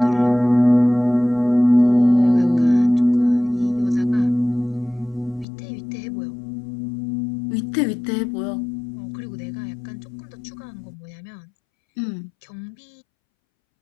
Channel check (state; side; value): drops out; right; at 5.5 s